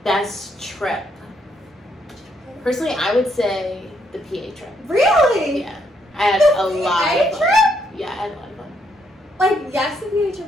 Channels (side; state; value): both; normal; correlation 0.74